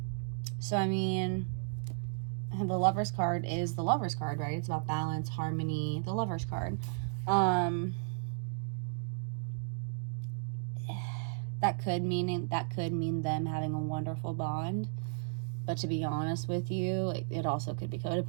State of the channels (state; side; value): silent; left; digital silence